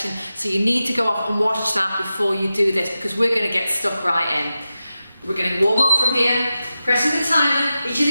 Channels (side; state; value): both; inverted; correlation -0.93